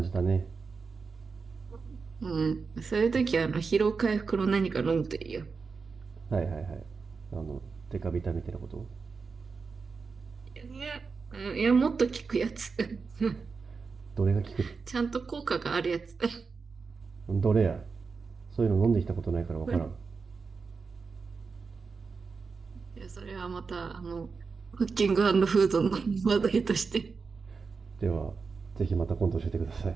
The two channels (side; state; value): left; quieter; 4.9 dB